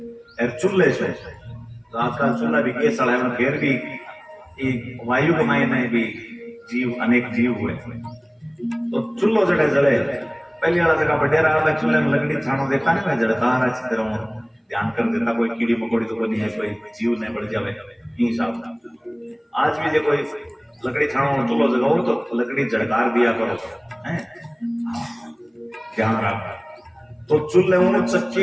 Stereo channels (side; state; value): both; identical; correlation 1.00